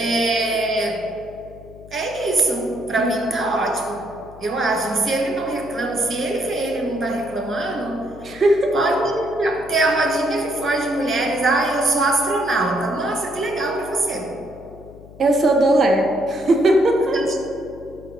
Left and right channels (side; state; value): left; noise; hum, 19 dB below the sound